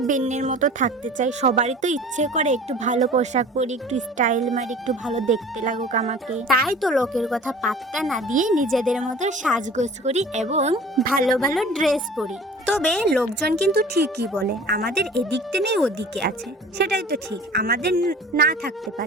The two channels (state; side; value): normal; both; correlation 0.43